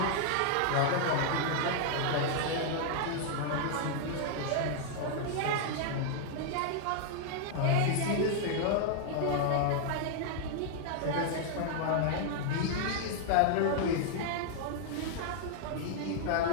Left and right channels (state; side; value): different; both; correlation 0.00